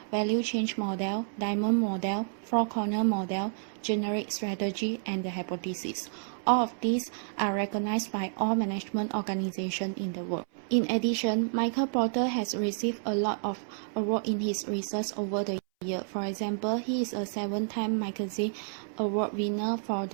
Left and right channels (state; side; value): silent; left; 58 dB below the other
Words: Value Change Model, Diamond Model, Four-Corner Model, Generic Strategy, and the Hypothesis. All of these are recognized by all management organizations in the world. In addition, Michael Porter has received a lot of awards in his research over the years. For example, he is a 7-time magazine award winner for